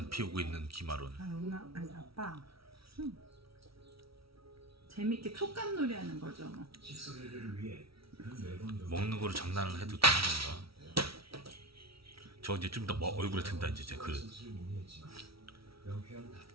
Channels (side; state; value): left; late; 0.75 ms